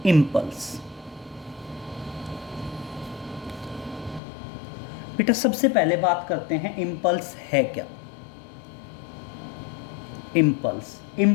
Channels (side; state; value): right; drops out; at 4.2 s